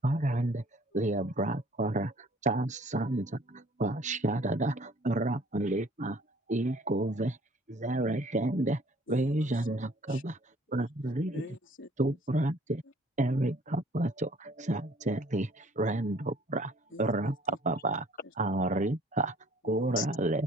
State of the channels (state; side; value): normal; both; correlation 0.56